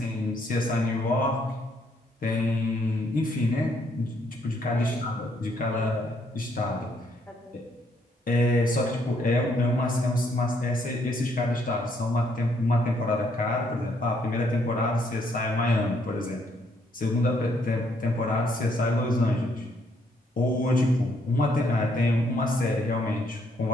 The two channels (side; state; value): both; normal; correlation 0.71